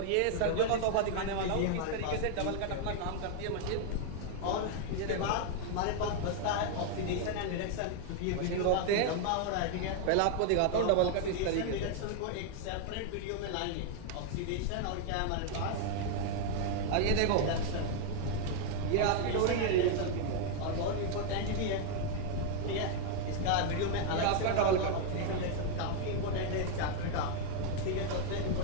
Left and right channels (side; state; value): both; different; correlation 0.00